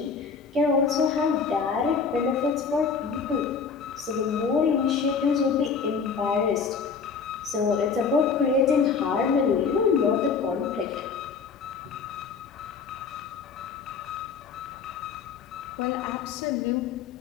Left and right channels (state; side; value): quieter; right; 5.6 dB